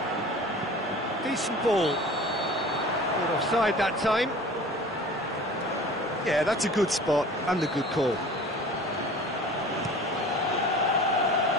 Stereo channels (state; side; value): normal; both; correlation 0.42